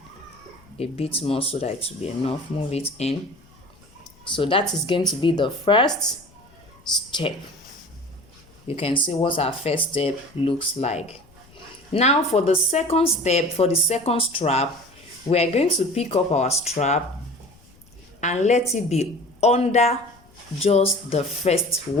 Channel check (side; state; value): left; noise; rumble, 28 dB below the sound